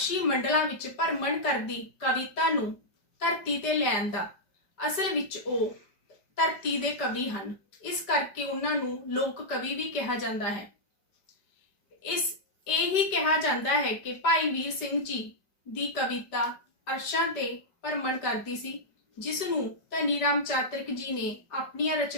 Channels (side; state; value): right; late; 5.0 ms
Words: ਮੰਡਲਾਂ ਵਿੱਚ ਭਰਮਣ ਕਰਦੀ ਕਵਿਤਾ ਨੂੰ ਧਰਤੀ ਤੇ ਲਿਆਉਣ ਦਾ ਅਸਲ ਵਿੱਚ ਉਹ ਧਰਤੀ ਦੇ ਕਵੀ ਹਨ। ਇਸ ਕਰਕੇ ਉਹਨਾਂ ਨੂੰ ਲੋਕ ਕਵੀ ਵੀ ਕਿਹਾ ਜਾਂਦਾ ਹੈ। ਇਹ ਹੀ ਕਿਹਾ ਜਾਂਦਾ ਹੈ ਕਿ ਭਾਈ ਵੀਰ ਸਿੰਘ ਜੀ ਦੀ ਕਵਿਤਾ ਅਰਸ਼ਾਂ ਤੇ ਭਰਮਣ ਕਰਦੀ ਸੀ, ਜਿਸ ਨੂੰ ਧਨੀ ਰਾਮ ਚਾਤਰਿਕ ਜੀ ਨੇ ਆਪਣੀਆਂ